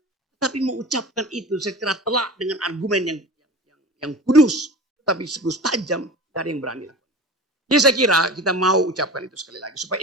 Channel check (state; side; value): normal; both; correlation 0.34